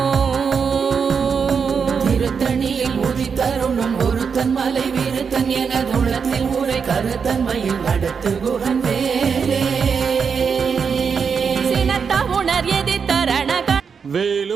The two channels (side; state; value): left; quieter; 6.1 dB